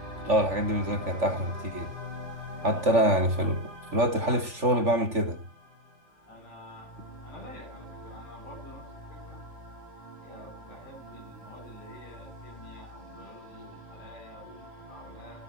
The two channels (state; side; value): late; left; 3.5 ms